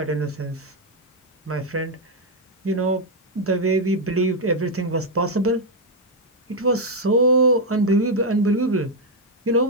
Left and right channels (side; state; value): both; normal; correlation 0.00